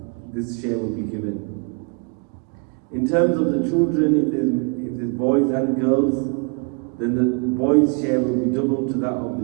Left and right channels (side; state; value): left; quieter; 34.1 dB